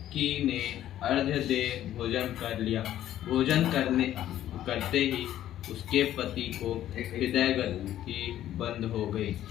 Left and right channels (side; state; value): right; quieter; 12.3 dB